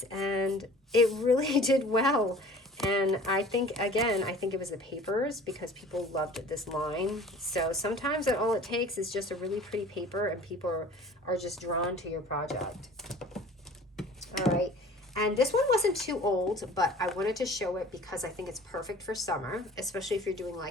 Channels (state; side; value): normal; both; correlation 0.46